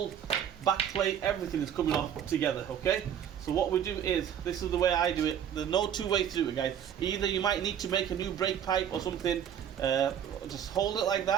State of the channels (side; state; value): left; quieter; 9.2 dB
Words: back plate, everything is coming off together, okay? So what we do is, this is the way I do it. There's no two ways to do it, guys. Either you might need to make a new brake pipe or something, just hold it like